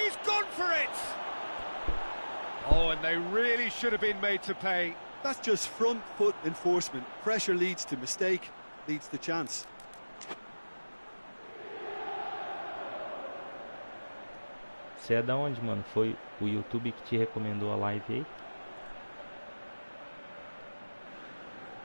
gone for it! Oh, and they really should have been made to pay. That's just front foot enforcement. Pressure leads to mistake, leads to chance. Você é da onde, mano? Foi o YouTube que te recomendou a live aí?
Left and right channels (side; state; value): both; inverted; correlation -1.00